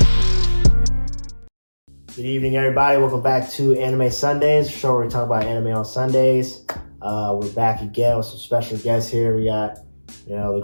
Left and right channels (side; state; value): both; inverted; correlation -1.00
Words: Good evening, everybody. Welcome back to Anime Sundays, the show where we talk about anime on Sundays. We're back again with some special guests here. We got, the